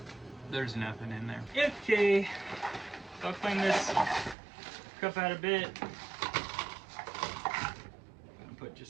There's nothing in there. Okay, so I'll clean this cup out a bit. Put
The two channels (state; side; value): drops out; left; at 4.4 s